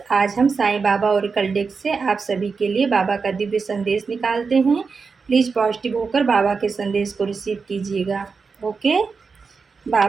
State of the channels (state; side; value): quieter; left; 5.0 dB